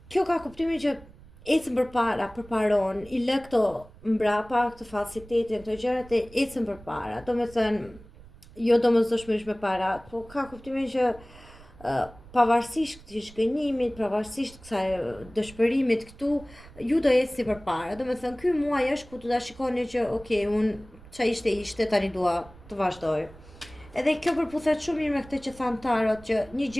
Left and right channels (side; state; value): right; noise; rumble, 21 dB below the sound